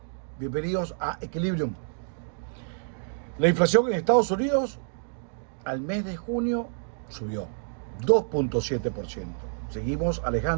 Bienvenidos a Equilibrium. La inflación en Estados Unidos al mes de junio subió 2.7%. Seguimos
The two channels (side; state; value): left; silent; digital silence